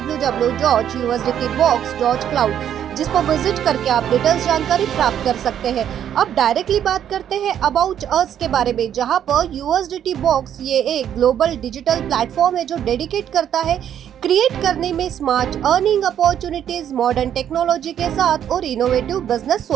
जिस पर विजिट करके आप डिटेल्स जानकारी प्राप्त कर सकते हैं। अब डायरेक्टली बात करते हैं अबाउट अस के बारे में, जहां पर यूएसडीटी बॉक्स ये एक ग्लोबल डिजिटल प्लेटफॉर्म है जो डेडिकेट करता है क्रिएट करने में smart earning opportunities modern technology के साथ और इनोवेटिव बिजनेस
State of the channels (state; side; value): quieter; left; 9.8 dB